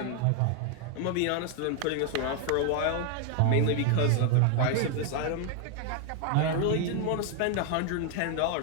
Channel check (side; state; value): both; different; correlation 0.00